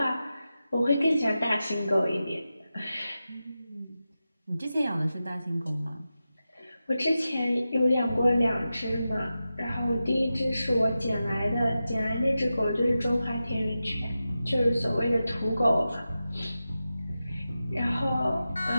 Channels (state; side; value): inverted; both; correlation -0.92